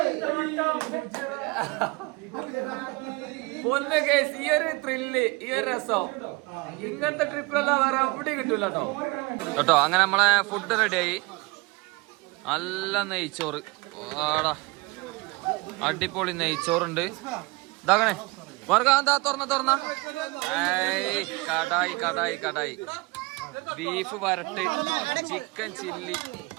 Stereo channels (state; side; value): quieter; left; 25.4 dB